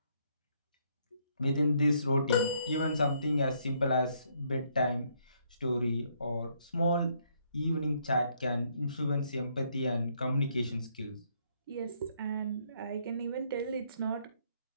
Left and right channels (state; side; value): inverted; both; correlation -0.71